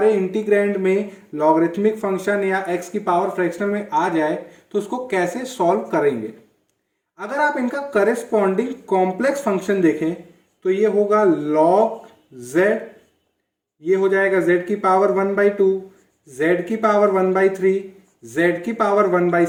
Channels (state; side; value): identical; both; correlation 1.00